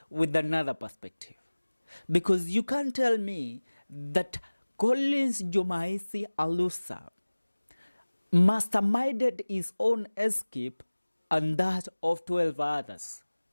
with another perspective. Because you can't tell me that Collins Jumaisi Alusa masterminded his own escape and that of 12 others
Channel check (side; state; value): both; inverted; correlation -1.00